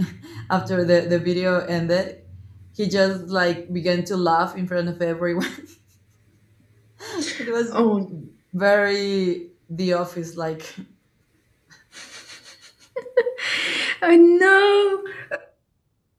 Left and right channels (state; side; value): identical; both; correlation 1.00